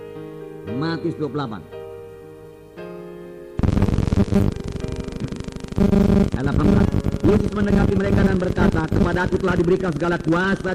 Ayat 18. Yesus mendekati mereka dan berkata, kepadaku telah diberikan segala kuasa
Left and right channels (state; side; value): identical; both; correlation 1.00